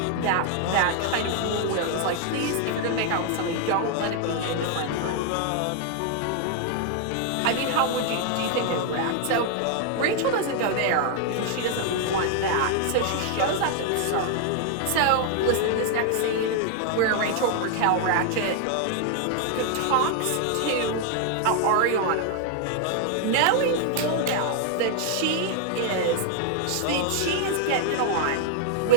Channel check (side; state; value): both; different; correlation 0.00